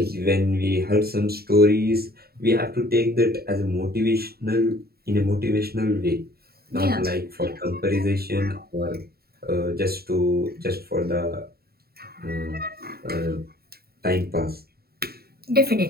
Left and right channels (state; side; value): late; left; 0.45 ms